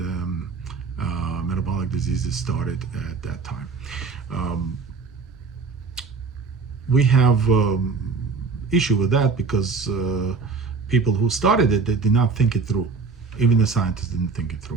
metabolic diseases started at that time. We have issue with that because people who started it, they did not think it through. Even the scientists didn't think it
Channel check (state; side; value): quieter; left; 4.8 dB